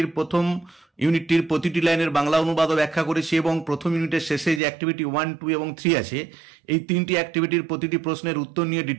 প্রথম ইউনিটটির প্রতিটি লাইনের বাংলা অনুবাদও ব্যাখ্যা করেছি, এবং প্রথম ইউনিটের শেষে যে অ্যাক্টিভিটি 1, 2 এবং 3 আছে, এই তিনটি অ্যাক্টিভিটির প্রতিটি প্রশ্নের উত্তর নিয়ে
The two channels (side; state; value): left; drops out; at 4.6 s